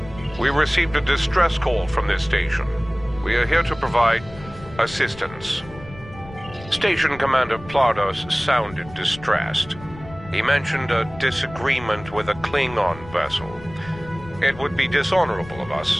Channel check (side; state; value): left; noise; rumble, 17 dB below the sound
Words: We received a distress call from this station. We are here to provide assistance. Station Commander Plardos sounded distressed. He mentioned a disagreement with a Klingon vessel. It would be dishonorable of